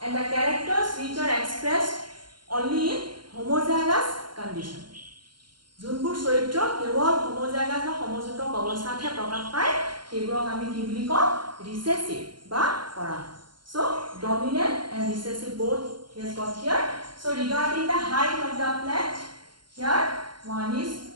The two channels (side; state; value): left; late; 0.72 ms